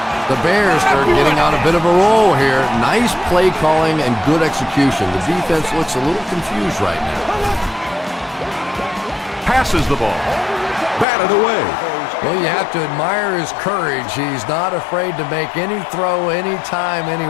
The Bears are getting on a bit of a roll here. Nice play calling and good execution. The defense looks a little confused right now. Passes the ball. Batted away. Well, you have to admire his courage. He's not afraid to make any throw, anytime,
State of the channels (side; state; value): right; drops out; at 11.1 s